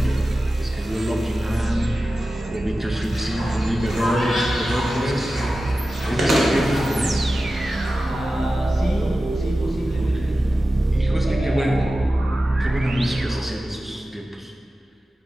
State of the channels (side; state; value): both; normal; correlation 0.94